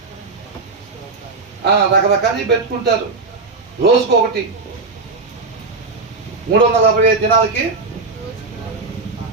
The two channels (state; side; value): quieter; left; 4.0 dB